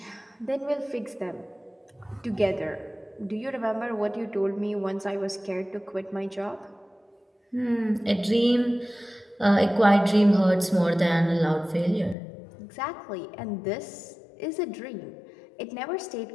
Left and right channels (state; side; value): drops out; right; at 12.2 s